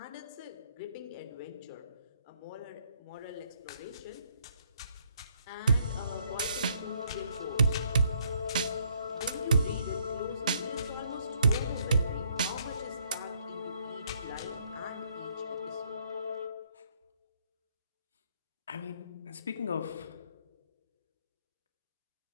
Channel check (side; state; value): both; inverted; correlation -0.69